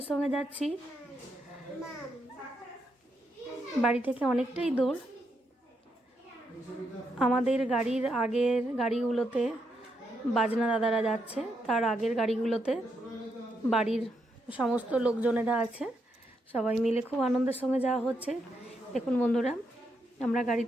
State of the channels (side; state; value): both; normal; correlation 0.80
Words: সঙ্গে যাচ্ছি। বাড়ি থেকে অনেকটাই দূর। আমাদের গাড়ির আগের গাড়িগুলোতে বাজনা দাদারা যাচ্ছে, তার আগের গাড়িগুলোতে বাড়ির সমস্ত লোকজনেরা আছে, সবাই মিলে খুব আনন্দের সঙ্গে যাওয়া হচ্ছে। দেখুন বন্ধুরা, আমরা